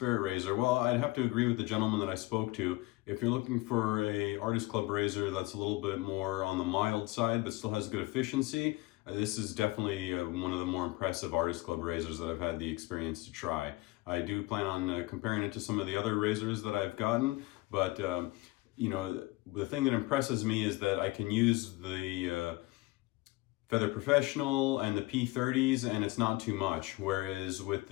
razor? Well, I'd have to agree with the gentleman that I spoke to. If you're looking for a Artist Club razor that's a little bit more on the mild side but still has good efficiency, this is definitely one of the more impressive Artist Club razors that I've had the experience to try. I do plan on comparing it to some of the other razors that I've gotten, but you know, the thing that impresses me is that I can use the Feather Professional and the P30s and it's not too much. Whereas with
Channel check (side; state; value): right; quieter; 21.1 dB